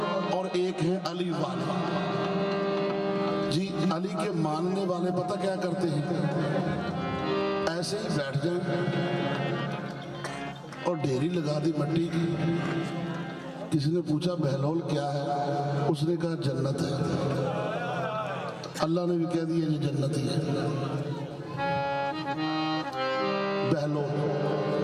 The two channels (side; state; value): both; identical; correlation 1.00